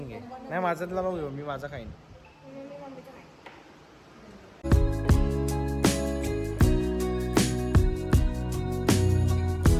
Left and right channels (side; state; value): both; identical; correlation 1.00